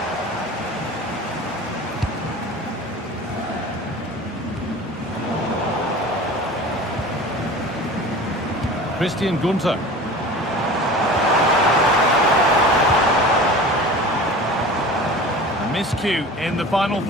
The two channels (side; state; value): both; normal; correlation 0.38